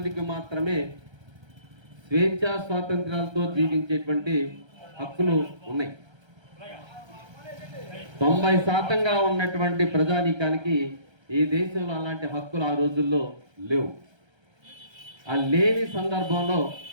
మాత్రమే స్వేచ్ఛా స్వాతంత్ర్యాలతో జీవించేటువంటి హక్కులు ఉన్నాయి. 90% ఉన్నటువంటి ప్రజానీకానికి ఈ దేశంలో అలాంటి హక్కులు ఆ రోజుల్లో లేవు. ఆ లేని సందర్భంలో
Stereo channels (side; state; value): left; late; 1.3 ms